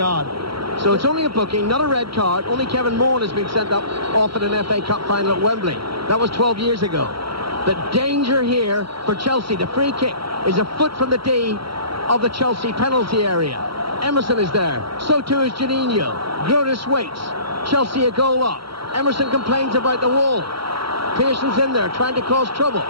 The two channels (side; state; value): left; late; 0.74 ms